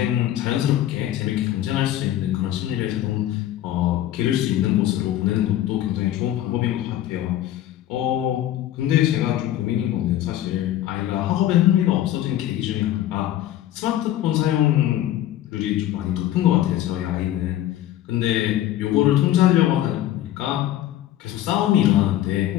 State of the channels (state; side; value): quieter; right; 12.9 dB